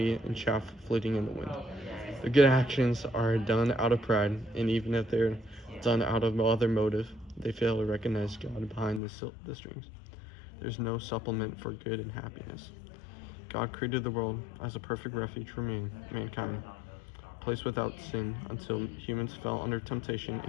and chaff flitting in the wind. The good actions are done out of pride, and even if they're done out of no other motive, they fail to recognize God behind the strings. There's no supplement for good and happiness. God created the world as a perfect refuge for mankind, a place without sin until humans fell under temptation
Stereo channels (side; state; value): right; drops out; at 9.0 s